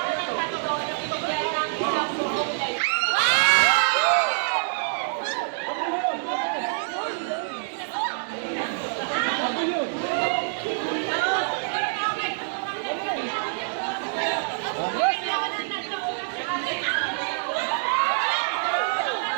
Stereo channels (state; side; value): silent; left; digital silence